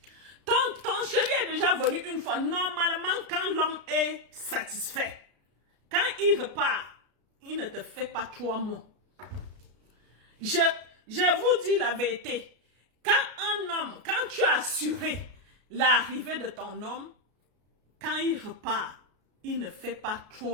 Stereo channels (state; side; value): late; left; 33 ms